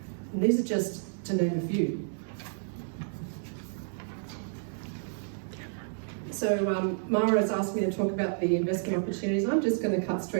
And these are just to name a few. So Mara has asked me to talk about the investment opportunities. I'm just going to cut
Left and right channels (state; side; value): silent; left; digital silence